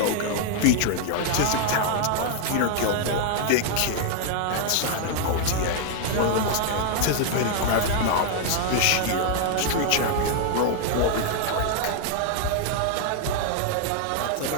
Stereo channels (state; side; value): different; both; correlation 0.00